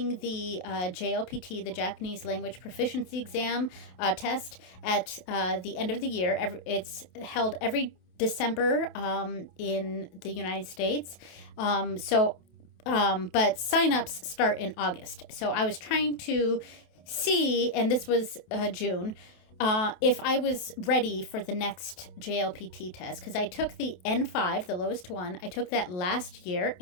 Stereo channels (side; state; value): right; late; 27 ms